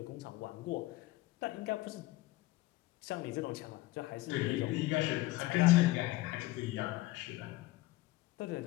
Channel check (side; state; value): right; quieter; 18.7 dB